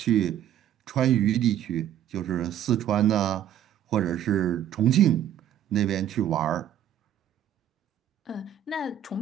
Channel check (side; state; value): left; quieter; 10.6 dB